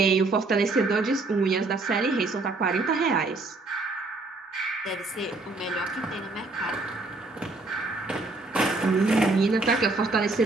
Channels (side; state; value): left; quieter; 3.4 dB